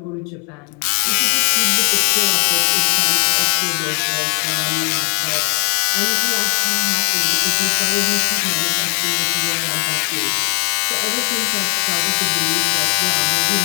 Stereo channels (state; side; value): quieter; right; 39.3 dB